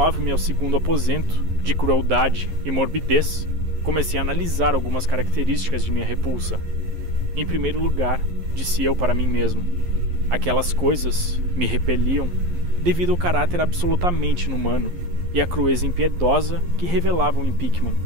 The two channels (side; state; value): left; late; 11 ms